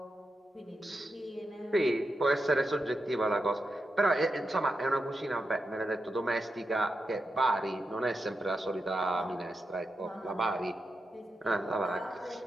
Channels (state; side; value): normal; both; correlation 0.87